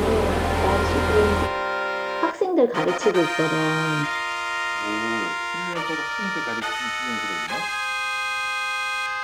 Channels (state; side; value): identical; both; correlation 1.00